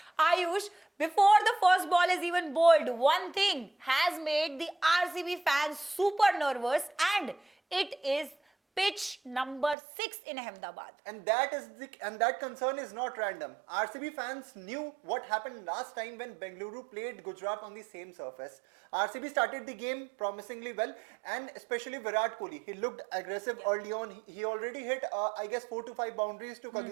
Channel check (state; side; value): drops out; left; at 9.8 s